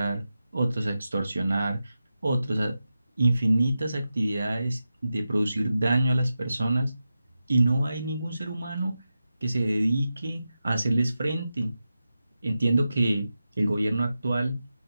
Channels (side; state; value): both; inverted; correlation -0.91